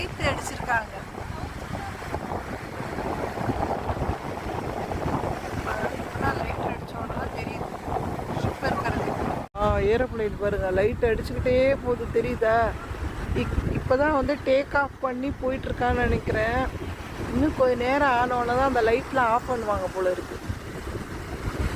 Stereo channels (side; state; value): both; identical; correlation 1.00